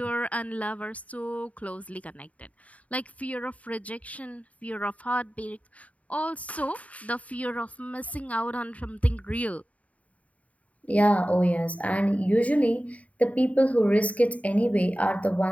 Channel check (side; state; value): right; late; 0.068 ms